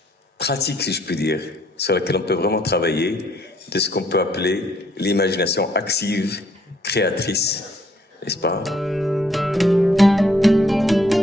pratique, si je puis dire, sur laquelle on peut vraiment travailler, de ce qu'on peut appeler l'imagination active, créatrice, n'est-ce pas?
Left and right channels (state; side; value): normal; both; correlation 0.67